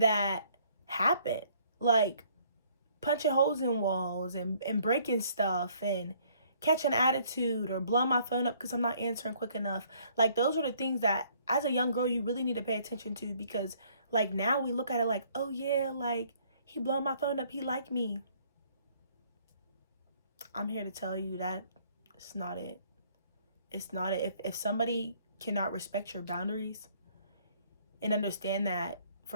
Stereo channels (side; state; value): both; inverted; correlation -0.62